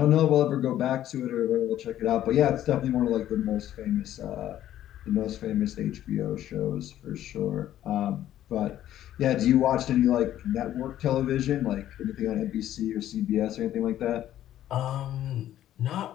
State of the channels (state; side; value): quieter; right; 12.3 dB